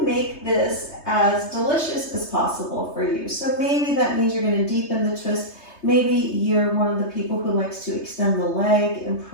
make this as delicious as possible for you. So maybe that means you're going to deepen the twist. Maybe you're one of the people who likes to extend the leg and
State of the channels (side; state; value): right; late; 3.3 ms